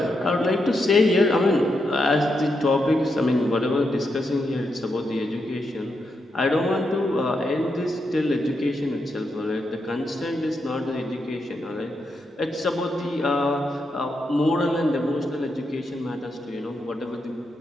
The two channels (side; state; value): both; normal; correlation 0.83